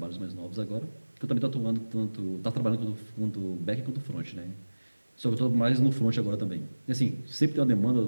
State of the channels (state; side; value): inverted; both; correlation -1.00